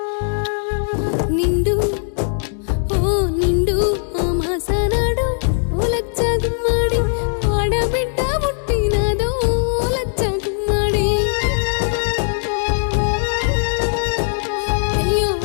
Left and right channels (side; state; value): right; silent; digital silence